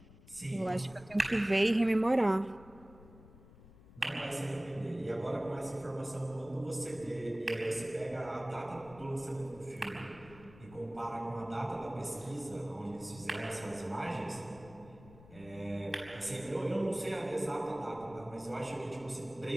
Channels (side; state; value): left; noise; rumble, 20 dB below the sound